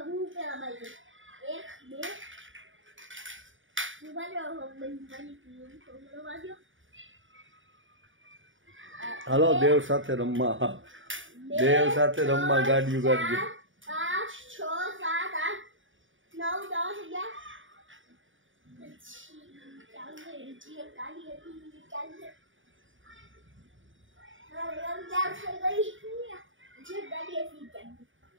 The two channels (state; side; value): late; left; 0.57 ms